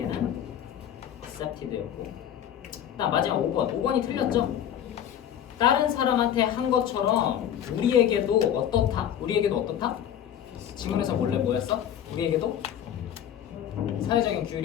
accepted였고 마지막 5번이 틀렸죠? 다른 사람한테 한 것처럼 우리에게도 어떻다? 지금에서 원래 뭐였어? 우리에게도 사회적인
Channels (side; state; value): right; quieter; 10.0 dB